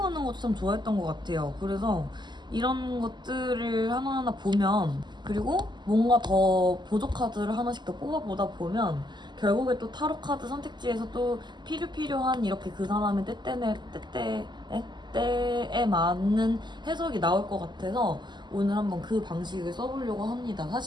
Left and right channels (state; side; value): late; left; 0.21 ms